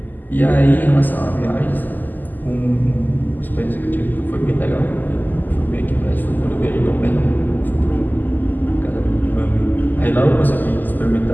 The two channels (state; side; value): late; right; 0.086 ms